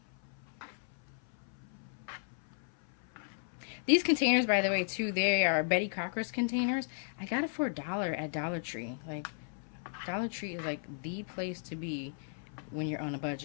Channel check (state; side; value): silent; right; 54 dB below the other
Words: These containers, by the way, too, they are Betty Crocker's containers. I got it for $1 at Dollar Tree. Like, Dollar Tree is like the place to be when you're on a